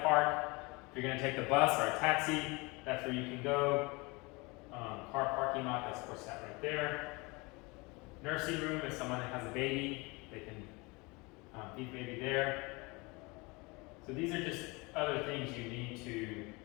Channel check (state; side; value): quieter; right; 26.2 dB